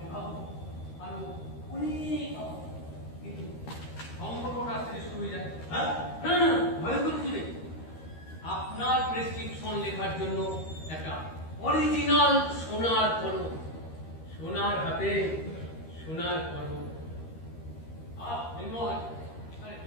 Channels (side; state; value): right; late; 13 ms